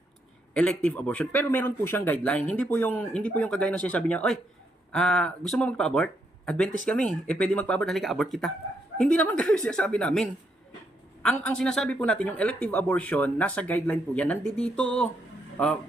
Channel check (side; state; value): both; normal; correlation 0.77